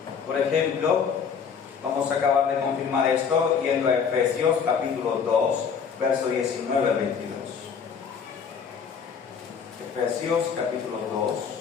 Por ejemplo, vamos a acabar de confirmar esto yendo a Efesios capítulo 2, verso 19 al 22. Efesios capítulo 2,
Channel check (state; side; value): quieter; right; 6.6 dB